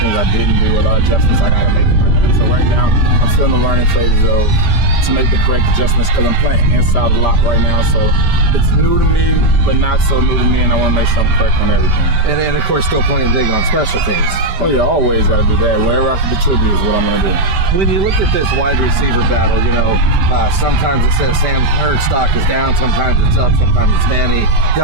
I didn't do, a lot of adjustments I got to make in my game. So right now I'm still in the learning phases to make the correct adjustments because I'm playing inside a lot right now. So it's new to me, but not so new to me, and I want to make sure I'm correct on everything. And of course, still playing big on special teams. Oh yeah, always got to do that. Wherever I can contribute is what I'm going to do. When you look at this wide receiver battle, sometimes it says Sam Hurd's stock is down, sometimes it's up, sometimes it's Manny,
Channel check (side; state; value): left; late; 5.1 ms